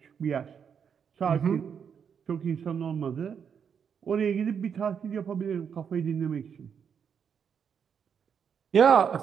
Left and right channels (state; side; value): quieter; left; 7.3 dB